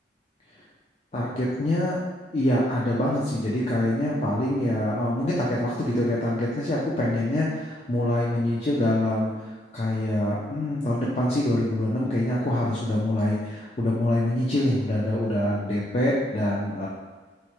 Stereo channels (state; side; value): normal; both; correlation 0.74